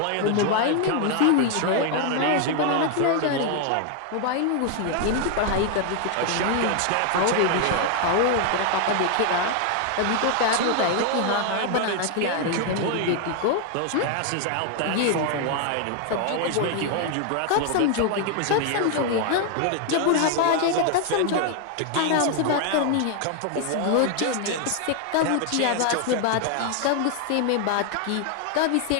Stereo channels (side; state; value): both; different; correlation 0.00